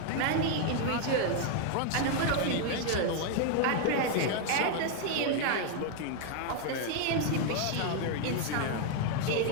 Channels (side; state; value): both; different; correlation 0.00